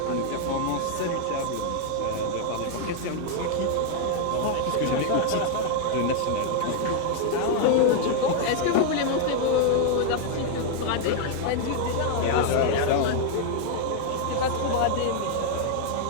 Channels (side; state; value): both; different; correlation 0.00